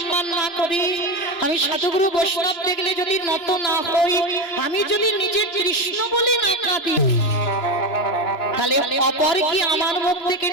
না করি, আমি সাধুগুরু বৈষ্ণব দেখলে যদি নত না হই, আমি যদি নিজে কৃষ্ণ বলি না কাঁদি, তাহলে অপর কি আমার মুখ থেকে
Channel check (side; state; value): right; late; 3.2 ms